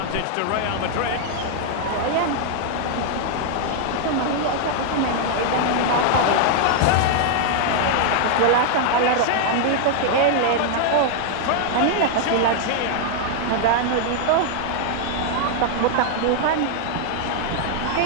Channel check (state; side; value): different; both; correlation 0.00